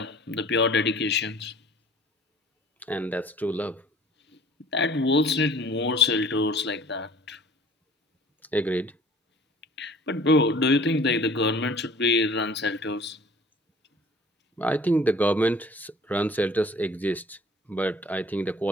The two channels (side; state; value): both; normal; correlation 0.50